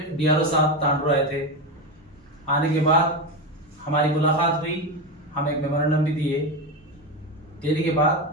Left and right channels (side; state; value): both; normal; correlation 0.16